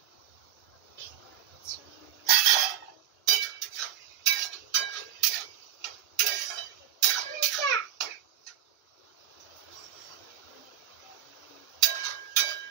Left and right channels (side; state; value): left; quieter; 11.6 dB